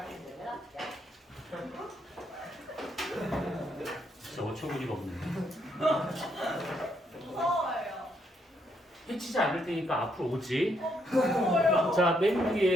야 진짜 어처구니가 없네. 무서워요. 해치지 않을 테니까 앞으로 오지. 무서워요. 자, 맨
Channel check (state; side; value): normal; both; correlation 0.75